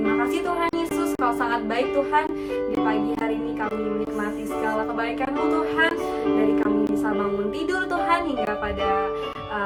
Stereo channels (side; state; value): both; identical; correlation 1.00